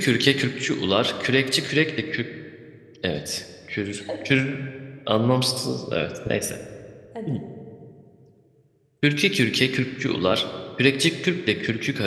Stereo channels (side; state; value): both; identical; correlation 1.00